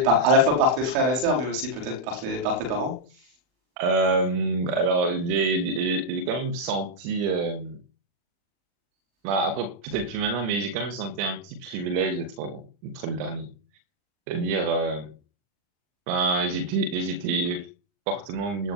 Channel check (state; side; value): late; left; 39 ms